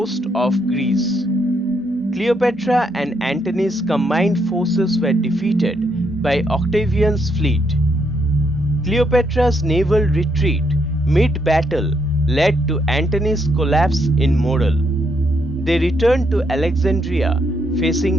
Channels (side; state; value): both; normal; correlation 0.75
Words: of Greece. Cleopatra and Antony's combined forces were defeated by Octavian's fleet. Cleopatra's naval retreat mid-battle led to Antony's collapse in morale. They returned to Alexandria,